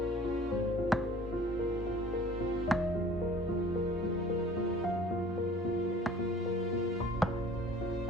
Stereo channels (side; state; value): both; normal; correlation 0.49